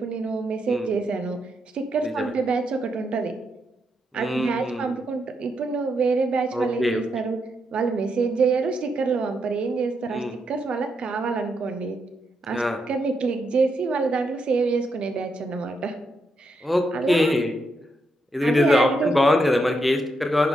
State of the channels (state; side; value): normal; both; correlation 0.81